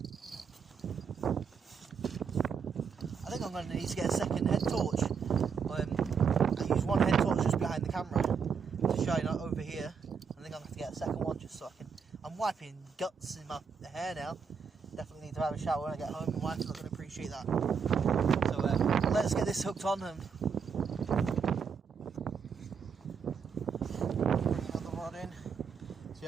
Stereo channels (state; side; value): quieter; left; 6.2 dB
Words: I think I'm going to need to get a second head torch. I use one head torch just behind the camera to shine over here. I think I'll have to get a second one just so I can... I'm wiping guts in my hair now. Definitely need to have a shower when I get home. My wife's not going to appreciate that. So let's get this hooked on and bring another rod in. So